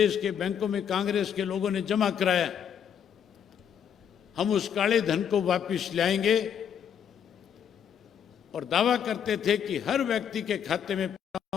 के बैंकों में कांग्रेस के लोगों ने जमा कराया, हम उस काले धन को वापस लाएंगे, और दावा करते थे कि हर व्यक्ति के खाते में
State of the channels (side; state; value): right; quieter; 8.4 dB